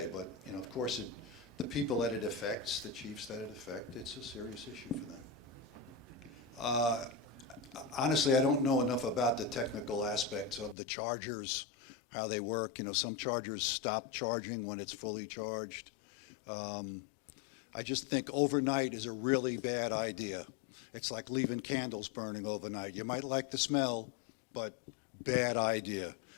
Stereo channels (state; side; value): drops out; right; at 10.8 s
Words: But, of course, the people that it affects, the chiefs that it affects, it's a serious issue for them. Honestly, I don't know enough about the technical aspects of the chargers, how they work. Some chargers stop charging when it's fully charged. I just think overnight is a really bad idea. It's like leaving candles burning overnight. You might like the smell, but bad idea.